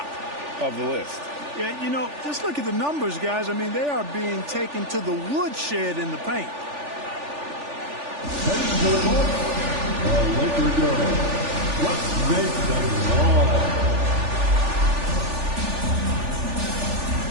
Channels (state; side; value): late; left; 3.4 ms